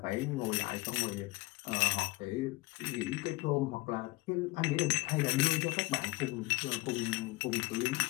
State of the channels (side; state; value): right; quieter; 21.6 dB